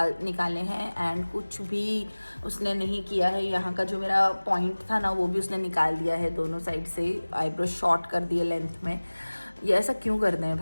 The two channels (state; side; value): inverted; both; correlation -1.00